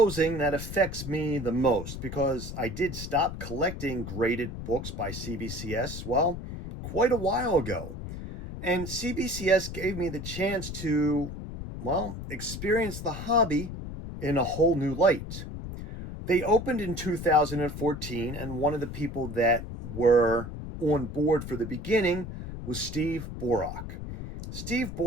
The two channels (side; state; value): left; noise; rumble, 8 dB below the sound